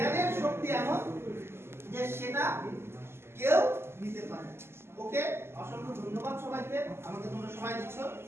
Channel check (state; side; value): late; left; 0.12 ms